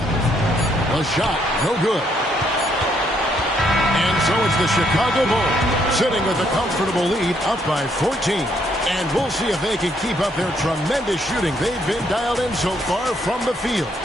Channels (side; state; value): both; normal; correlation 0.71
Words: A shot, no good. And so it's the Chicago Bulls sitting with a comfortable lead up by 14. And we'll see if they can keep up their tremendous shooting. They've been dialed in so far from the field.